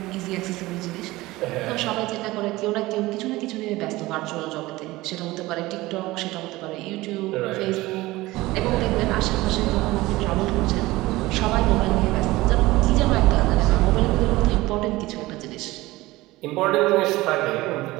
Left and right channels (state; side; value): quieter; left; 19.1 dB